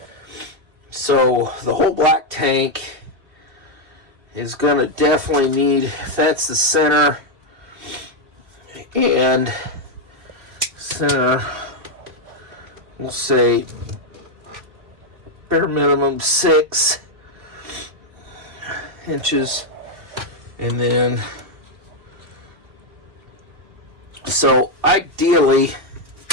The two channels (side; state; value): left; late; 2.8 ms